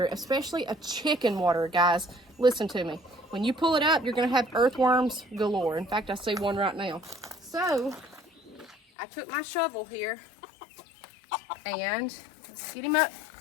it, especially a chicken water, guys, listen to me. When you pull it up, you're going to have earthworms galore. In fact, I see one right now. So I took my shovel here and let's get him up.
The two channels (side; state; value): right; drops out; at 8.8 s